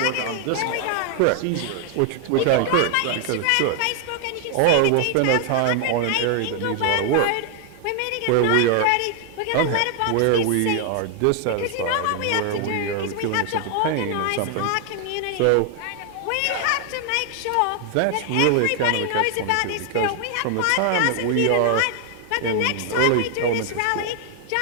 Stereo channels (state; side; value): different; both; correlation 0.00